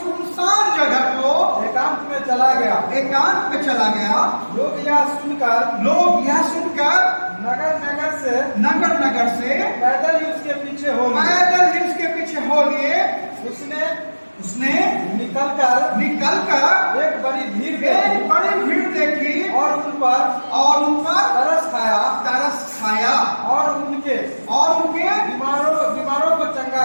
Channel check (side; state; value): both; inverted; correlation -1.00